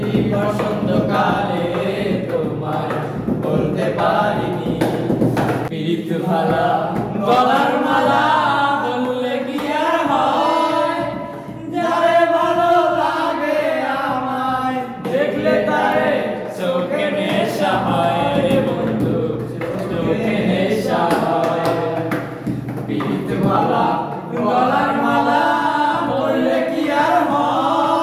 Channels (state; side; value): identical; both; correlation 1.00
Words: বসন্তকালে তোমায় বলতে পারিনি প্রীত ভালা গলার মালা বললে কি আর হয় যারে ভালো লাগে আমায় দেখলে তারে চোখে নেশা হয় রে বন্ধু চোখে নেশা হয় প্রীত ভালা গলার মালা বললে কি আর